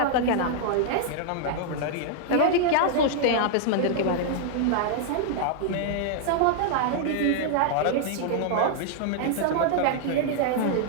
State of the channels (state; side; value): different; both; correlation -0.01